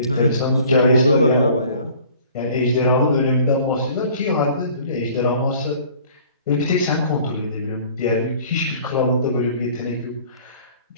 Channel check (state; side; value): inverted; both; correlation -0.51